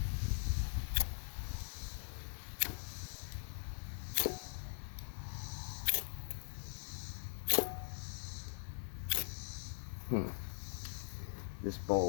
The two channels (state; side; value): silent; right; digital silence